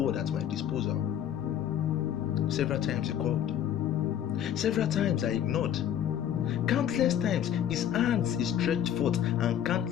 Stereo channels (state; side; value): quieter; right; 10.1 dB